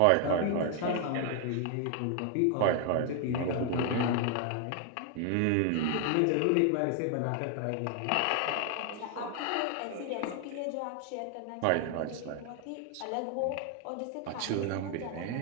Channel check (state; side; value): different; both; correlation 0.00